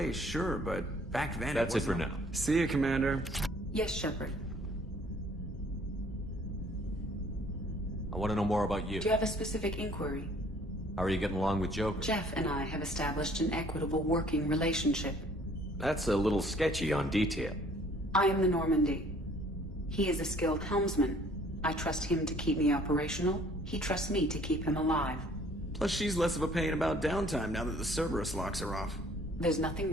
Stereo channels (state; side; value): normal; both; correlation 0.57